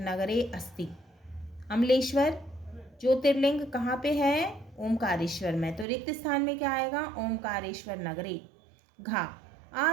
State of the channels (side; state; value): left; drops out; at 5.9 s